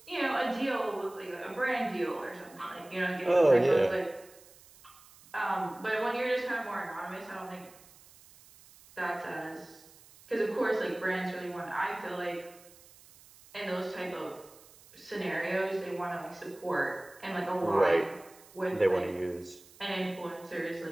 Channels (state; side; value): noise; right; hiss, 24 dB below the sound